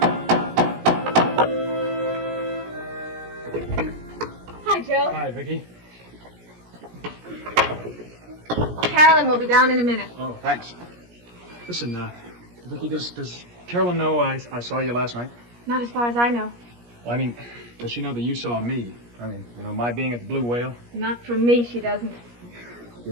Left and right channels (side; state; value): left; late; 17 ms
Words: Hi, Joe. Hi, Vicky. Carolyn will be down in a minute. Oh, thanks. Listen, Vicky, does Carolyn know I saw you last night? Not as far as I know. Well, I mean, does she know that you saw me? I mean, my being at the Blue Whale? Not from me, she doesn't.